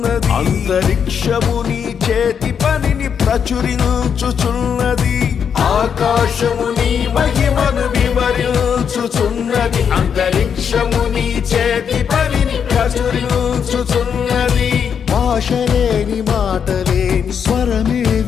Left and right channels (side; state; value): right; quieter; 7.4 dB